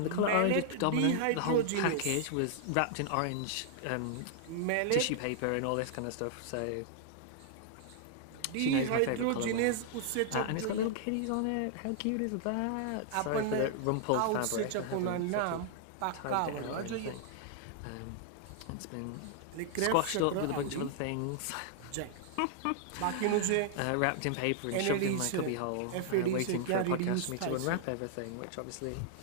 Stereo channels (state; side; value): different; both; correlation -0.01